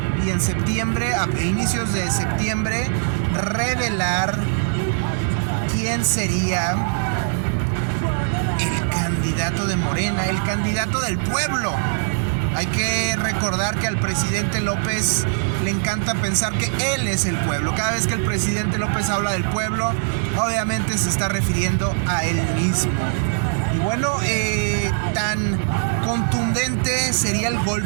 y en septiembre, a inicios de septiembre, revelar quién sería el candidato de Morena, el candidato del pueblo. Hay que recordar que al presidente López le encanta pensar que él es el pueblo. Cada vez que el presidente López habla del pueblo, obviamente se está refiriendo a él mismo. Y bueno, tan contundente sería el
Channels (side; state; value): left; silent; digital silence